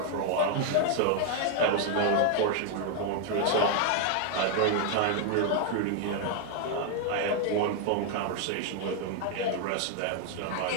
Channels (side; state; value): both; different; correlation 0.01